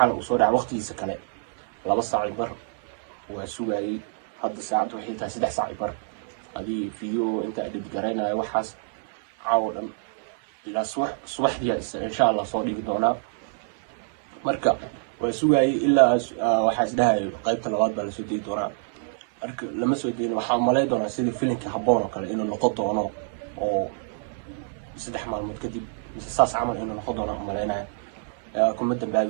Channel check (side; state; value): left; silent; 61 dB below the other